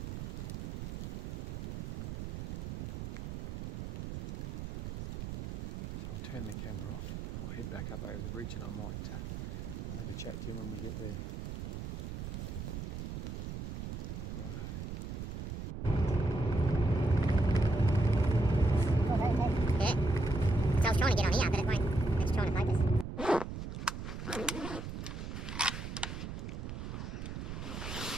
So I'll turn the camera off, I'll head back up over the ridge, and I might I'll have a chat to him when we get there. Right. Yeah. So I was trying to get on here, but it won't. It's trying to focus.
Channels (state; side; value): noise; right; rumble, 5 dB below the sound